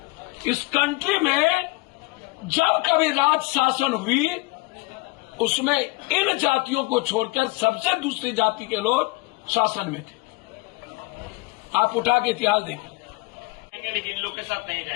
इस कंट्री में जब कभी राज शासन हुई उसमें इन जातियों को छोड़कर सबसे दूसरी जाति के लोग शासन में थे। आप उठा के इतिहास देखें, लेकिन इन लोग के साथ नहीं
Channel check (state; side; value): quieter; right; 24.1 dB